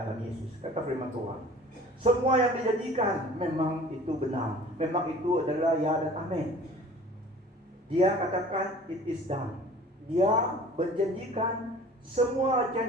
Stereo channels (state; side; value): normal; both; correlation 0.46